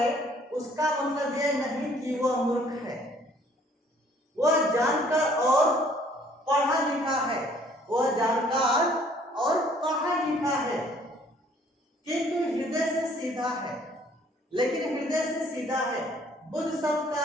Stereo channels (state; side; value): normal; both; correlation 0.59